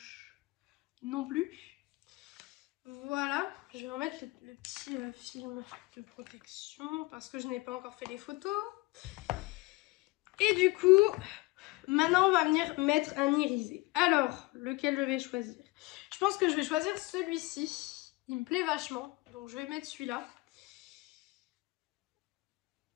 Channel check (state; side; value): quieter; right; 23.3 dB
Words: non plus. Voilà, je vais remettre le petit film de protection parce que je n'ai pas encore fait les photos. Et du coup, maintenant on va venir mettre un irisé. Alors, lequel je vais choisir? Je pense que je vais choisir celui-ci. Il me plaît vachement, donc je vais mettre celui-là.